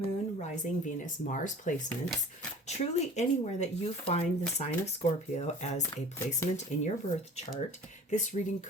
Rising, Venus, Mars placements. Truly anywhere that you find the sign of Scorpio as a placement in your birth chart, this reading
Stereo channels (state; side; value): normal; both; correlation 0.44